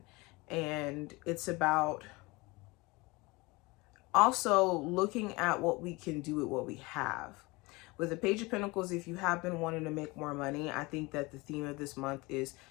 And it's about also looking at what we can do with what we have. With the Page of Pentacles, if you have been wanting to make more money, I think that the theme of this month is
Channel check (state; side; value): quieter; right; 23.9 dB